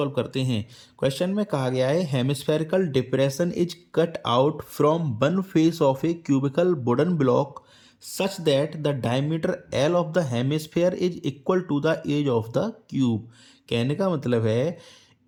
करते हैं। Question में कहा गया है hemispherical depression is cut out from one face of a cubical wooden block such that the diameter L of the hemisphere is equal to the edge of the cube. कहने का मतलब है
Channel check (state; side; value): identical; both; correlation 1.00